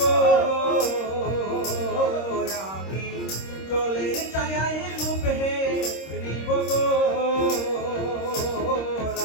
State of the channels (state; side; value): late; right; 26 ms